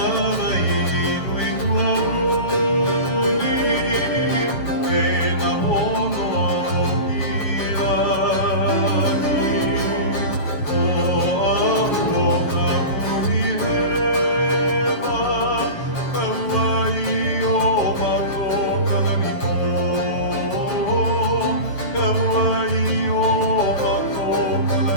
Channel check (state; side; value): late; right; 6.5 ms